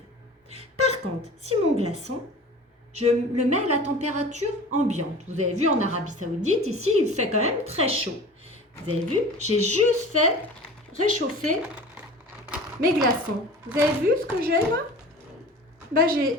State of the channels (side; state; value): both; normal; correlation 0.39